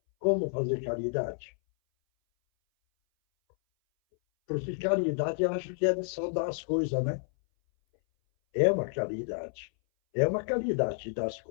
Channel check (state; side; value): silent; right; 58 dB below the other